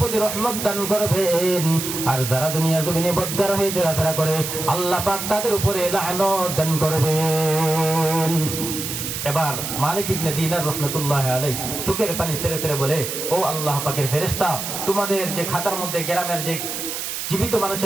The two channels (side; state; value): right; noise; hiss, 5 dB below the sound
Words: রহমত দান করবেন, আর যারা দুনিয়ার জমিনে বদকার হয়ে চলাফেরা করে আল্লাহ পাক তাদের উপরে লানত দান করবেন। এবার মালিক ইবনে দিনার রাহমাতুল্লাহি আলাইহি চোখের পানি ছেড়ে ছেড়ে বলে, ও আল্লাহ পাকের ফেরেশতা, তোমাদের যে খাতার মধ্যে গ্রামের যে জীবিত